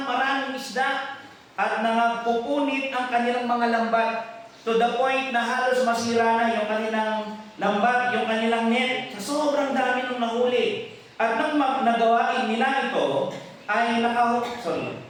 maraming isda at nangagpupunit ang kanilang mga lambat to the point na halos masira na yung kanilang lambat, yung kanilang net. Sa sobrang dami nung nahuli. At nang nagawain nila ito, ay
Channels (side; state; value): both; identical; correlation 1.00